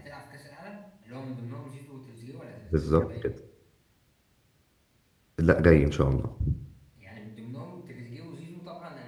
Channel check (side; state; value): both; identical; correlation 1.00